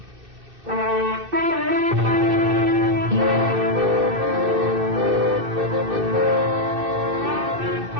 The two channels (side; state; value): left; late; 2.6 ms